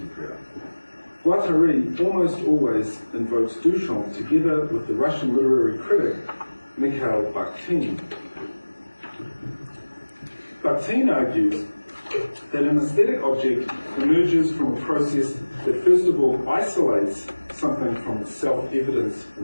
Guattari almost always invokes Duchamp together with the Russian literary critic Mikhail Bakhtin. Bakhtin argues that an aesthetic object emerges from a process that first of all isolates something from its self-evidence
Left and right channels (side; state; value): both; inverted; correlation -1.00